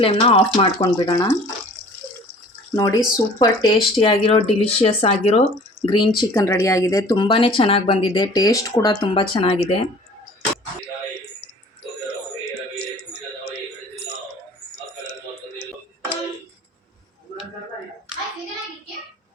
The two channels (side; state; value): both; normal; correlation 0.48